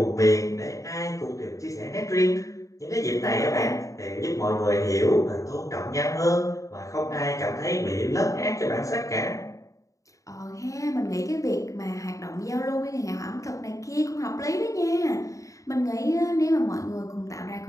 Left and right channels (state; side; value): late; right; 0.16 ms